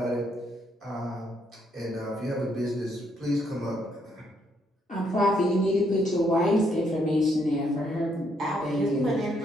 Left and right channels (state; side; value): normal; both; correlation 0.73